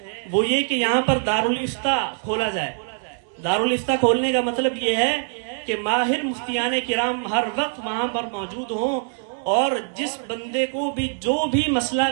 وہ یہ کہ یہاں پر دارالافتاء کھولا جائے۔ دارالافتاء کھولنے کا مطلب یہ ہے کہ ماہر مفتیان کرام ہر وقت وہاں پر موجود ہوں، اور جس بندے کو بھی جو بھی مسئلہ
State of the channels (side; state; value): left; silent; digital silence